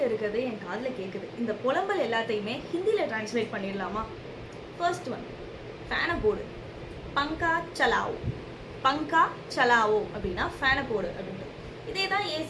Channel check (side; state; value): both; identical; correlation 1.00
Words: இருக்கிறது என் காதுல கேக்குது. இந்த புலம்பல் எல்லாத்தையுமே ஹிந்தில டிரான்ஸ்லேட் பண்ணிடலாமா? ஃபர்ஸ்ட் ஒன், ஃபேனை போடு. பங்கா சலாவோ. பங்கா சலாவோ அப்படின்னா ஃபேனை போடு அப்படின்றது. இதே தான்